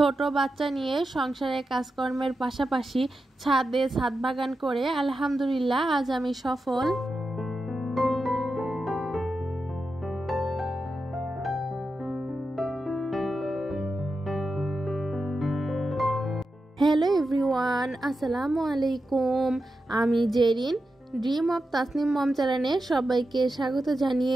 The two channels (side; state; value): both; normal; correlation 0.90